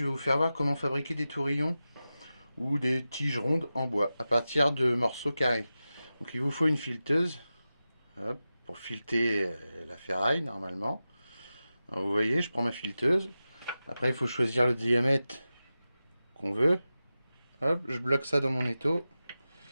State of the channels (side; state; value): both; inverted; correlation -0.94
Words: vais vous faire voir comment fabriquer des tourillons ou des tiges rondes en bois à partir de morceaux carrés. Donc il vous faut une fileteuse, hop, pour fileter la ferraille normalement. Alors vous voyez, je prends ma fileteuse. Après il faut choisir le diamètre qu'on veut. Hop, je bloque ça dans mon étau.